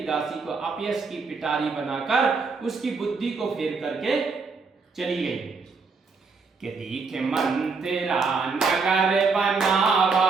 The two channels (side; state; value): left; quieter; 4.7 dB